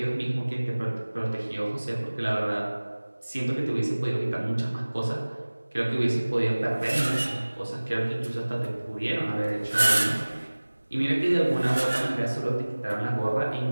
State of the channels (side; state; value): both; inverted; correlation -1.00